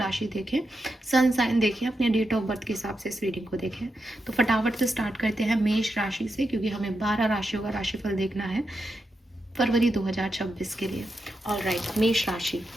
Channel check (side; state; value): both; normal; correlation 0.86